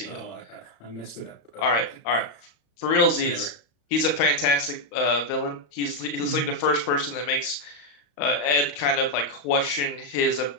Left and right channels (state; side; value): late; right; 35 ms